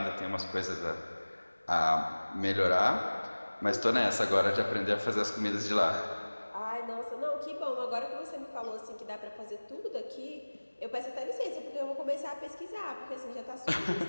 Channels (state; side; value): inverted; both; correlation -1.00